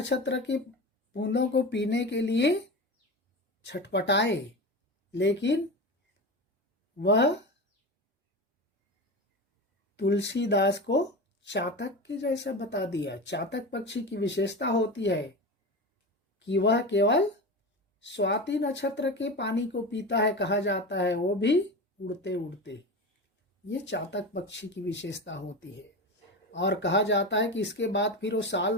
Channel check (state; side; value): normal; both; correlation 0.25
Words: के बूंदों को पीने के लिए छटपटाए, लेकिन वह तुलसीदास को चातक के जैसा बता दिया। चातक पक्षी की विशेषता होती है कि वह केवल स्वाति नक्षत्र के पानी को पीता है, कहा जाता है, वो भी उड़ते उड़ते। ये चातक पक्षी की विशेषता होती है। और कहा जाता है कि इसके बाद फिर वो साल